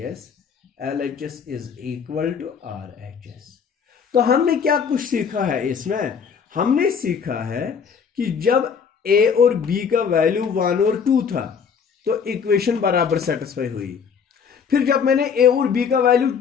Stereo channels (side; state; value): right; quieter; 6.6 dB